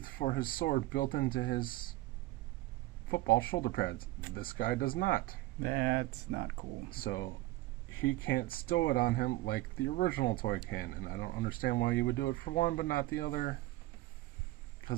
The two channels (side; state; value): left; quieter; 18.1 dB